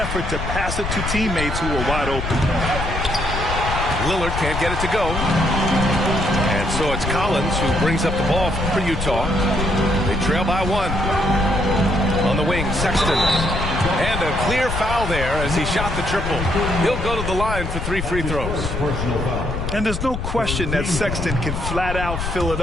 to pass it to teammates who are wide open. Lillard can't get it to go. And so it's Collins who brings up the ball for Utah. They trail by 1. On the wing, Sexton. And a clear foul there as he shot the triple. He'll go to the line for 3 free throws. And there's no question that Sexton can flat out fill it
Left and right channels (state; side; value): noise; left; rumble, 4 dB below the sound